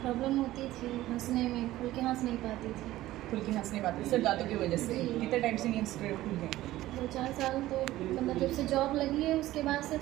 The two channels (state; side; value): quieter; left; 15.8 dB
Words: प्रॉब्लम होती थी हंसने में, खुल के हंस नहीं पाती थी। खुल के हंस नहीं पाते सिर्फ दांतों की वजह से? कितने टाइम से नहीं हंस रहे खुल के? 2-4 साल तो मतलब जब से जॉब लगी है उसके बाद से